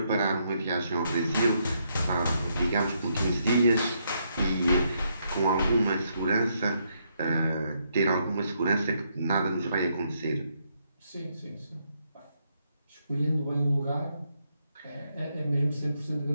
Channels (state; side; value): inverted; both; correlation -0.76